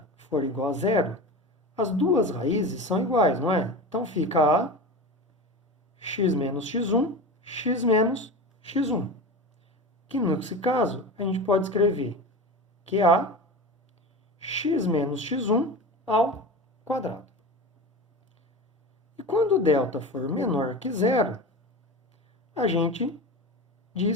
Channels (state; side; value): normal; both; correlation 0.28